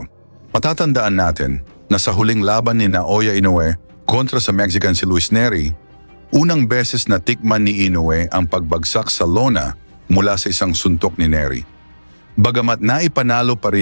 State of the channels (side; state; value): both; inverted; correlation -1.00